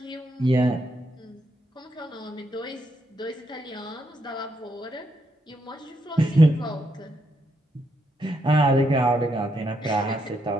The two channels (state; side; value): normal; both; correlation 0.79